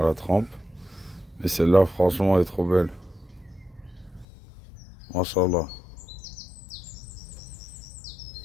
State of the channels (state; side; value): drops out; right; at 4.2 s